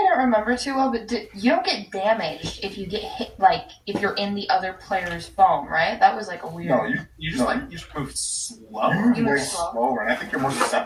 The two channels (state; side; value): identical; both; correlation 1.00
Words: don't remember too well, but you don't get damaged if you get hit, like, if you're in the other player's foam, right? That was, like, a weird... No, you just move slower. You move way slower, and I think you're more